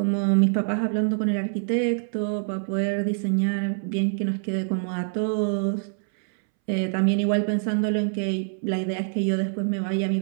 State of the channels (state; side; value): silent; left; 62 dB below the other